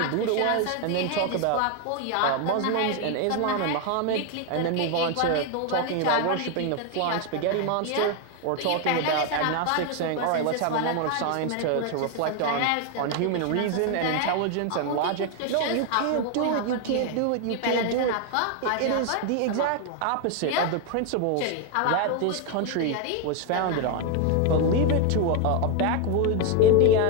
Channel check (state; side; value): different; both; correlation 0.01